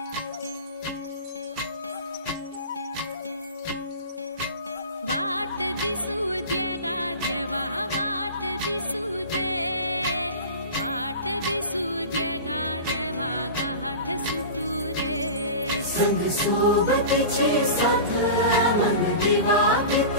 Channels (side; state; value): both; inverted; correlation -0.32